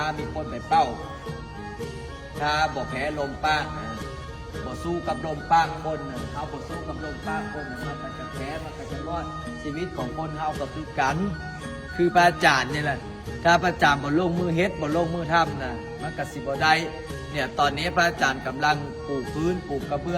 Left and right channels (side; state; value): both; identical; correlation 1.00